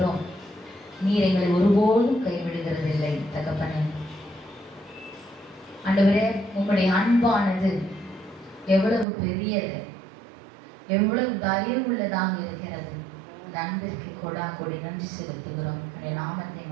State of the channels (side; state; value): left; drops out; at 9.1 s